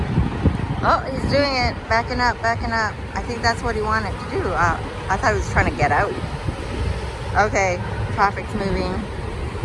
it, backing up, backing up. I think that's what he wanted to do. I thought he was trying to get out. Okay, traffic's moving.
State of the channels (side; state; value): both; identical; correlation 1.00